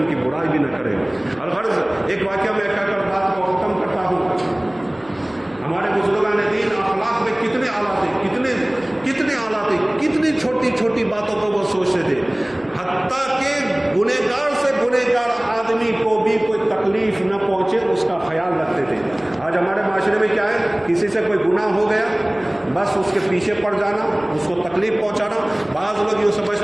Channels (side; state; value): right; noise; hum, 28 dB below the sound